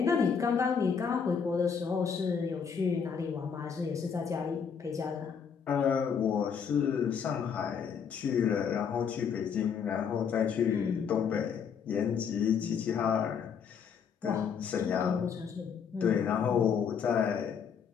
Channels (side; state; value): right; quieter; 6.8 dB